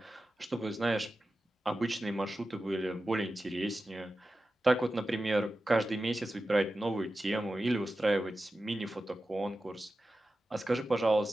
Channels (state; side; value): normal; both; correlation 0.93